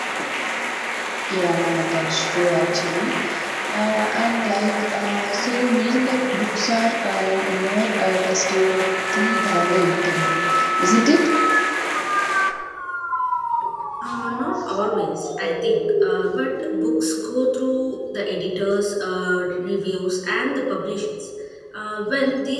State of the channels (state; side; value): identical; both; correlation 1.00